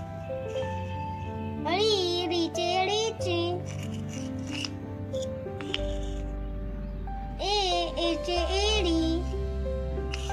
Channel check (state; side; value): identical; both; correlation 1.00